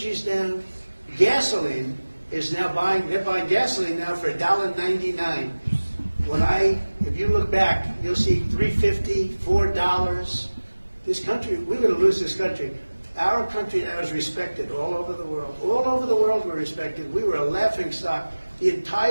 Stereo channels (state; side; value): inverted; both; correlation -1.00